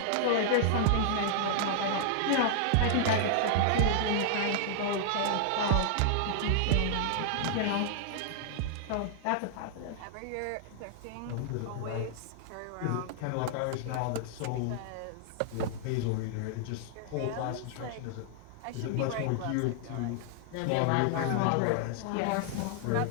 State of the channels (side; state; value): both; different; correlation -0.01